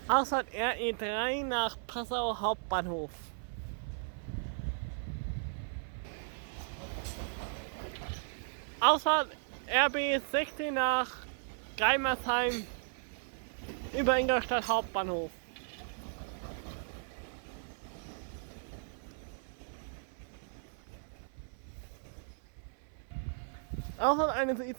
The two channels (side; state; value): left; silent; 54 dB below the other